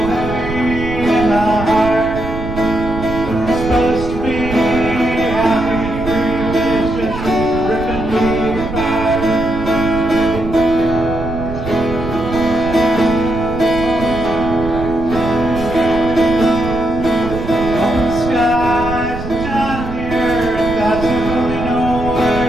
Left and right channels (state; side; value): noise; right; rumble, 8 dB below the sound